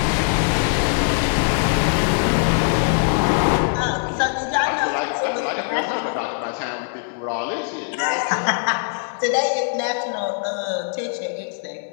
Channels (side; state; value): right; silent; 65 dB below the other